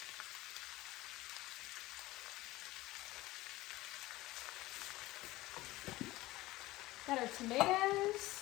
Got our tomatoes.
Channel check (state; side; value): quieter; right; 18.3 dB